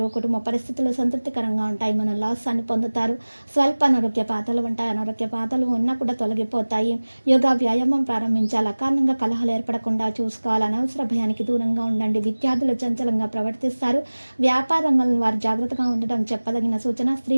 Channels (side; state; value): both; inverted; correlation -1.00